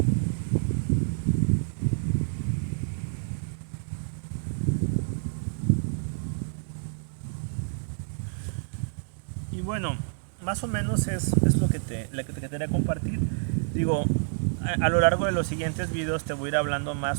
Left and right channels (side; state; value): left; silent; digital silence